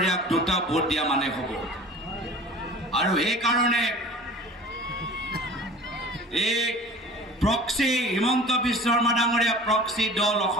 2টা ভোট দিয়া মানে হ'ব। আৰু সেইকাৰণে এই প্ৰক্সি হিমন্ত বিশ্ব শৰ্মা ডাঙৰীয়া প্ৰক্সি দল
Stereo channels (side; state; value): both; normal; correlation 0.42